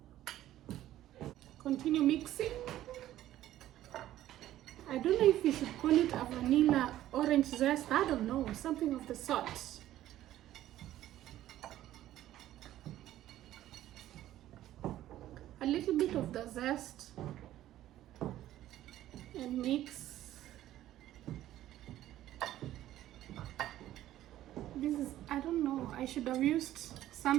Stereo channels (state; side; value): quieter; left; 13.5 dB